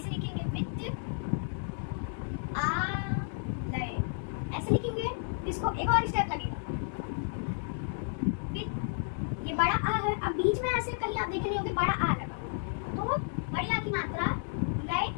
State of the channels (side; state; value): right; silent; digital silence